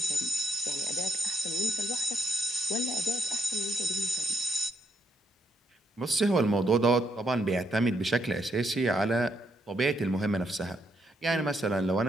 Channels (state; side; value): normal; both; correlation 0.75